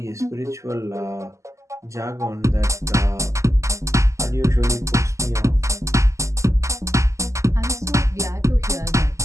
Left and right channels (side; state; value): left; late; 0.15 ms